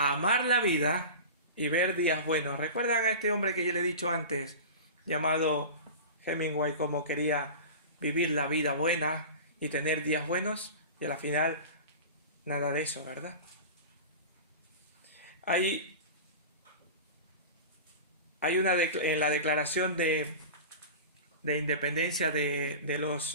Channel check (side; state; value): both; inverted; correlation -0.32